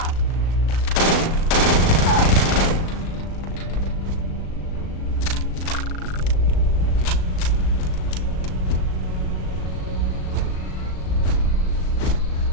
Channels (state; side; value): late; right; 37 ms